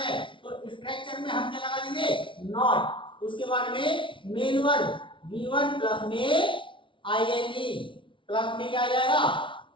तो स्ट्रक्चर में हम क्या लगा देंगे, नॉट। उसके बाद में मेन वर्ब V1 प्लस में आईएनजी, प्लस में क्या आ जाएगा,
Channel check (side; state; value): right; late; 0.25 ms